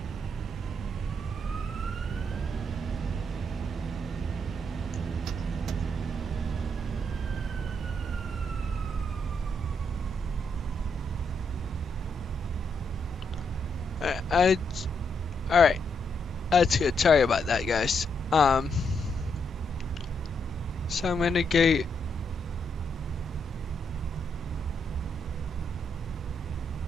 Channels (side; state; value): both; normal; correlation 0.78